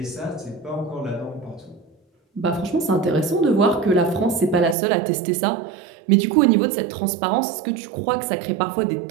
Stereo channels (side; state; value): left; drops out; at 4.8 s